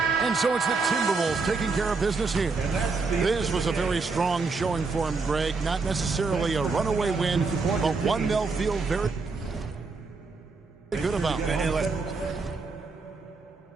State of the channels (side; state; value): left; quieter; 4.3 dB